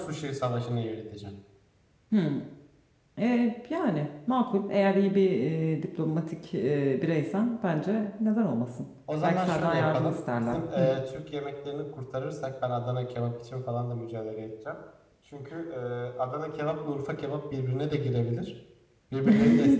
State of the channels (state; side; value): identical; both; correlation 1.00